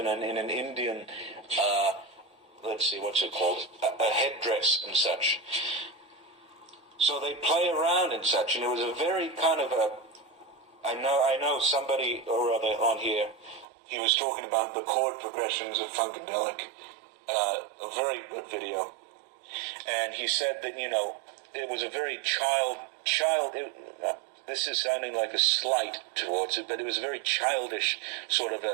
Indian... let's see, what's it called? A headdress and such. So they play around and such, and it was a very kind of a... I know somebody or other on here, he was talking about the chord progressions of Funkadelic. A very good video. And he said that, it was a very this is sounding like a slight towards it, but it was a very childish sort of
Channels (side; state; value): left; drops out; at 13.7 s